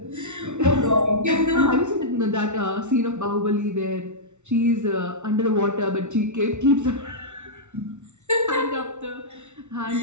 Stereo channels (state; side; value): late; left; 0.83 ms